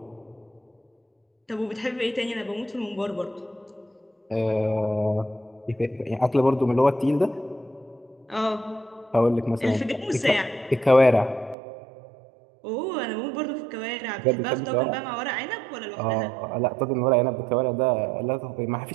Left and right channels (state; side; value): drops out; left; at 11.6 s